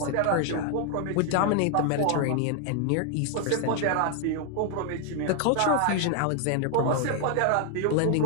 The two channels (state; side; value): different; both; correlation 0.00